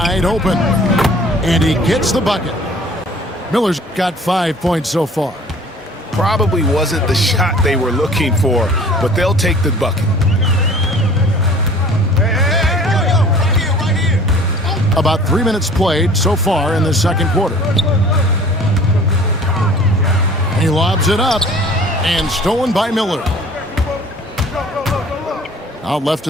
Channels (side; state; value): both; normal; correlation 0.49